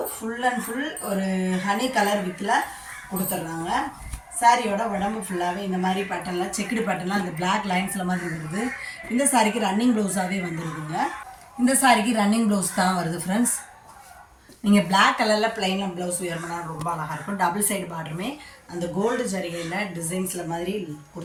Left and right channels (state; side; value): identical; both; correlation 1.00